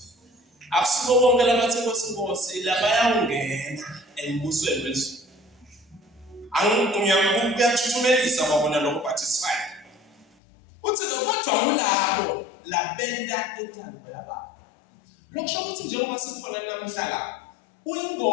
Akusibo bonke labathi Nkosi labayangena embusweni wethu. Kuyathuthumela kwabona lokho participate. Uthi kodwa ulabo labenda intando yabantu. Lokusho ukuthi njengoba sikhona namhlanje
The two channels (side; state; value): right; drops out; at 10.2 s